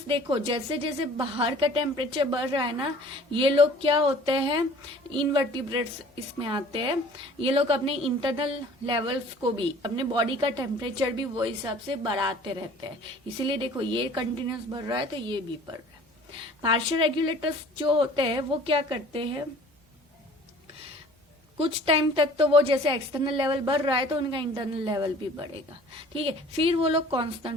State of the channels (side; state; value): both; normal; correlation 0.49